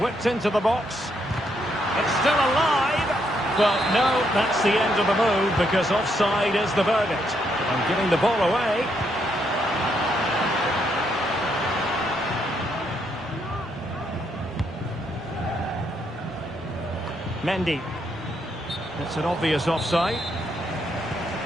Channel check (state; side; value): normal; both; correlation 0.76